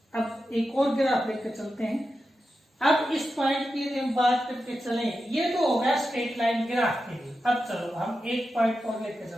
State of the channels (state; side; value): normal; both; correlation 0.90